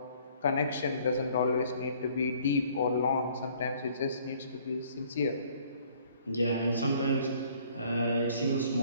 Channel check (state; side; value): inverted; both; correlation -0.58